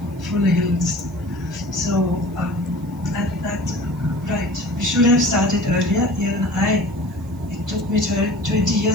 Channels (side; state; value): right; noise; hiss, 28 dB below the sound